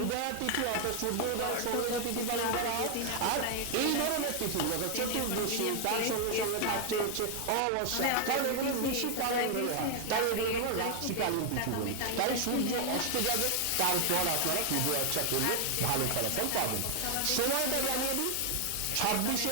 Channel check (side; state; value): both; different; correlation 0.00